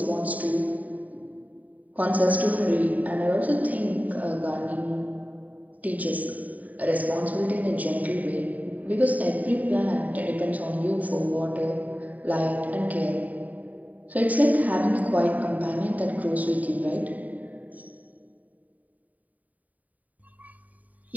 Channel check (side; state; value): left; late; 0.074 ms